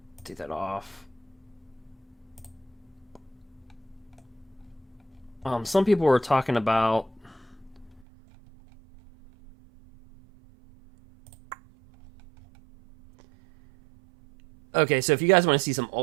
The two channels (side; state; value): left; drops out; at 8.1 s